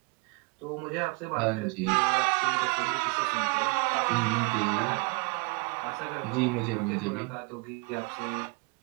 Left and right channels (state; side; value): quieter; left; 31.2 dB